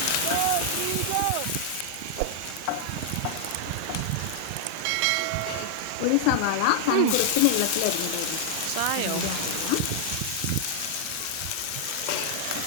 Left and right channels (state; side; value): different; both; correlation -0.01